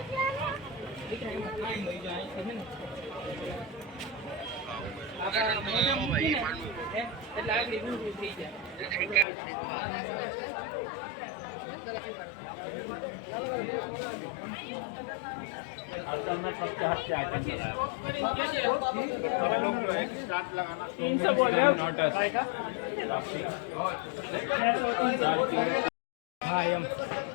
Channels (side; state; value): right; drops out; at 9.2 s